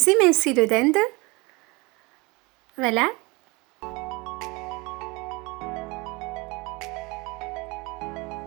émincés de dinde. Voilà.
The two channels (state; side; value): quieter; left; 25.8 dB